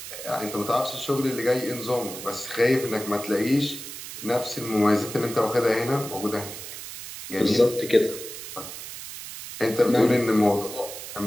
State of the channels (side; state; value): right; noise; hiss, 10 dB below the sound